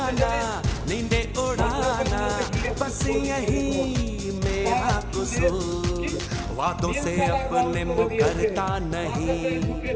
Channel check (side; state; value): both; identical; correlation 1.00